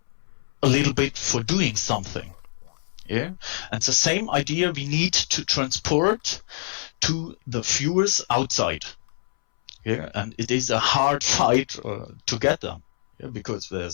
a little bit for doing something. Yeah, and the same idea we need to transport to the viewers outside. Yeah, and it is a hard fight to get them. Yeah, because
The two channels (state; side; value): silent; right; 61 dB below the other